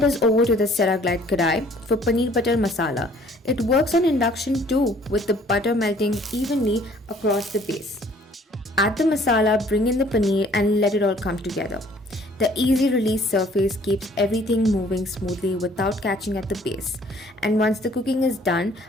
is over to the Ceraglide Kadai for paneer butter masala. It works on induction too, with the butter melting evenly across the base. Add the masala, bring in the paneer and let it all come together. The easy release surface keeps everything moving smoothly without catching at the base. And once the cooking is done,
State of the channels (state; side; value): normal; both; correlation 0.57